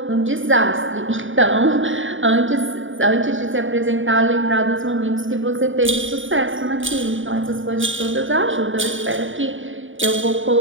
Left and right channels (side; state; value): left; late; 0.57 ms